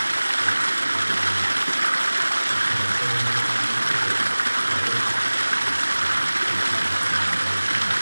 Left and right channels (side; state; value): both; inverted; correlation -1.00